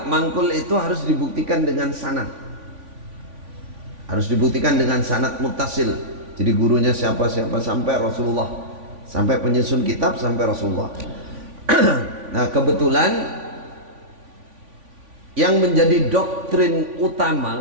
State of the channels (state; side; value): late; left; 3.5 ms